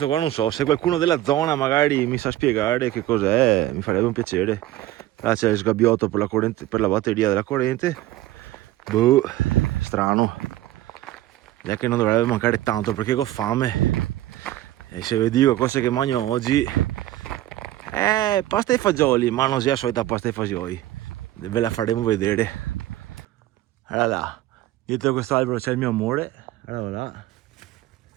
qua non so, se qualcuno della zona magari mi sa spiegare che cos'è, mi farebbe un piacere. Là c'è il sgabbiotto per la corrente, per la batteria della corrente. Boh, strano. È che non dovrebbe mancare tanto perché ho fame. E se vi dico cose che mangio oggi, pasta e fagioli, ma non sia la solita pasta e fagioli. Ve la faremo vedere. Allora là, dietro questo albero c'è il mio amore. Allora là.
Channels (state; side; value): quieter; left; 15.2 dB